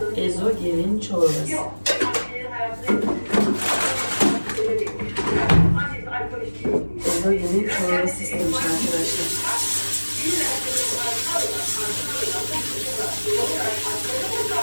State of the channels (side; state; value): both; inverted; correlation -1.00